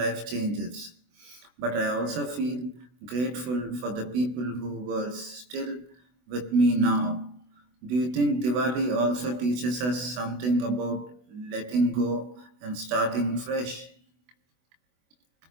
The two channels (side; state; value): left; late; 24 ms